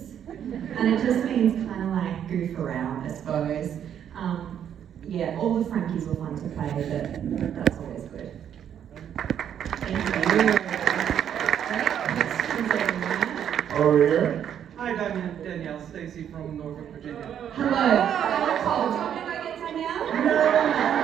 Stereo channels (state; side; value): quieter; left; 9.3 dB